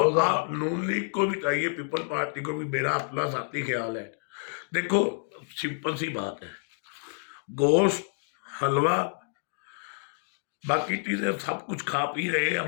2000? नून लीग को भी चाहिए, पीपल पार्टी को भी, मेरा अपना साथी ख्याल है। देखो, सिंपल सी बात है, गोश्त, हलवा, बाकी चीजें सब कुछ खा पी रहे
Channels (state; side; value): silent; right; digital silence